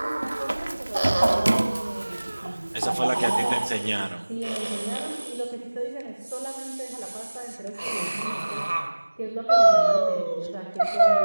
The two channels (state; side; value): inverted; both; correlation -1.00